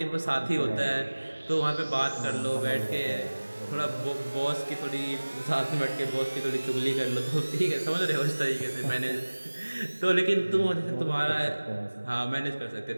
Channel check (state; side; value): inverted; both; correlation -1.00